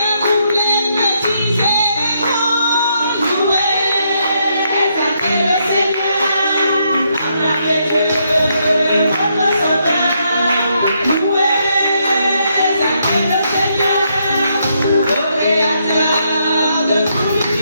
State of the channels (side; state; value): both; inverted; correlation -0.76